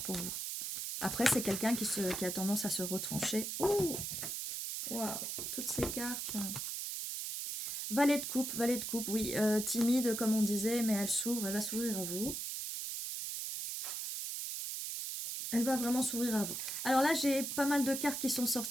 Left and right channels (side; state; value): right; noise; hiss, 4 dB below the sound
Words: pour vous. Après, c'est quelqu'un qui a tendance à se retrancher. Ouh! Waouh! Toutes ces cartes. Valet de coupe, oui. Timide, comme on disait, mais elle va s'ouvrir à vous. Elle va vraiment s'ouvrir à vous. Alors là, j'ai pas mal de cartes qui sont